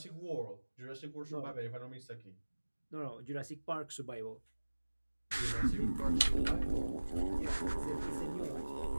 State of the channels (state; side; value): inverted; both; correlation -1.00